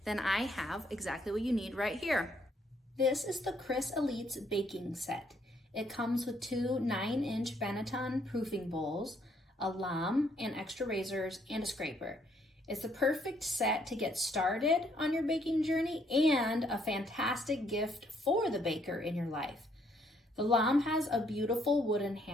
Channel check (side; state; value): both; normal; correlation 0.69